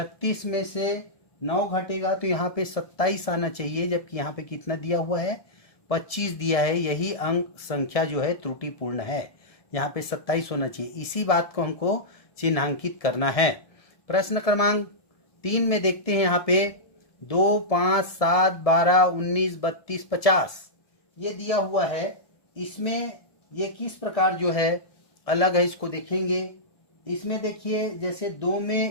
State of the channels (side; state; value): right; late; 1.7 ms